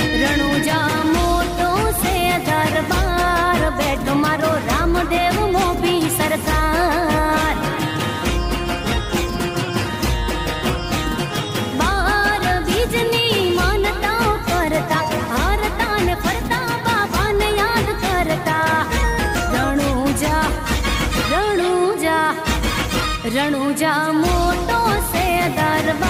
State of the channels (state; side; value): identical; both; correlation 1.00